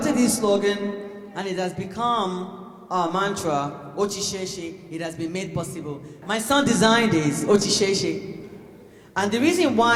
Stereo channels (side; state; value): both; identical; correlation 1.00